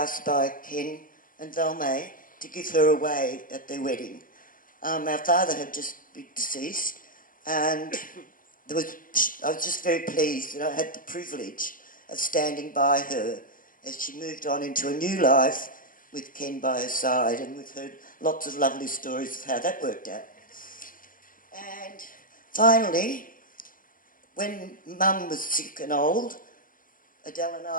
by Ken and Valmai to give her away at their wedding. Our father had just been deceased, and I was just very pleased that I had the privilege of standing by her as she moved on into a new life with Ken by her side, and we've heard lots of lovely stories of how that worked out. And finally, when Mum was sick and old, Adele and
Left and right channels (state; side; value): late; right; 0.40 ms